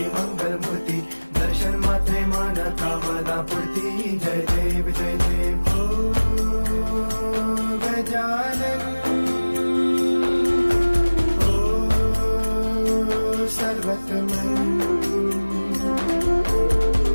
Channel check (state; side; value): inverted; both; correlation -1.00